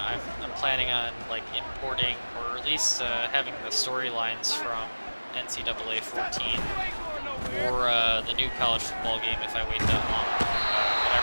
planning on like importing or at least having the storylines from NCAA 14 or the new college football game if I wait that long. But I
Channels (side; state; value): both; inverted; correlation -1.00